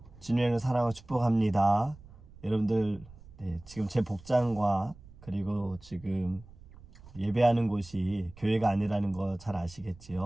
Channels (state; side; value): noise; right; rumble, 21 dB below the sound